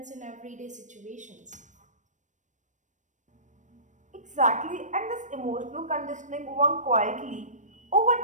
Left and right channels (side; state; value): left; late; 0.35 ms